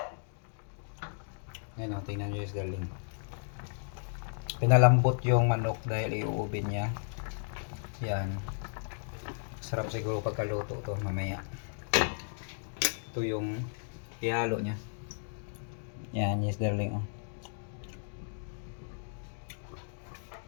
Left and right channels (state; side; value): silent; right; digital silence